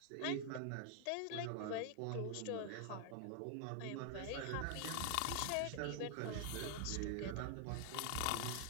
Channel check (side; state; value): both; different; correlation 0.00